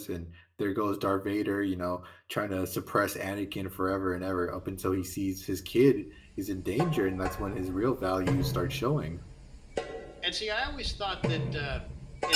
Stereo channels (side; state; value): both; identical; correlation 1.00